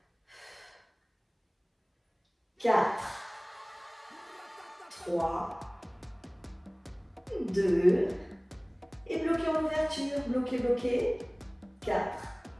4, 3, 2, et bloquez en ouverture, bloquez. 4,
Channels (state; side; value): identical; both; correlation 1.00